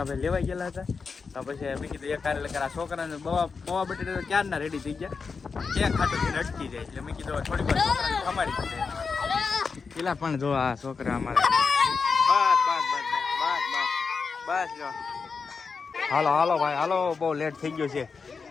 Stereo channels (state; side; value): quieter; right; 5.1 dB